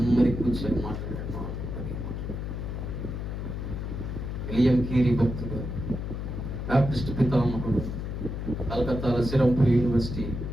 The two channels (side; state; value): left; noise; hum, 5 dB below the sound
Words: కూర్చొని మాట్లాడాడు. విలియం కేరీ భక్తుడు, బాప్టిస్ట్ పితామహుడు, కలకత్తాలో సిరంపూర్ యూనివర్సిటీ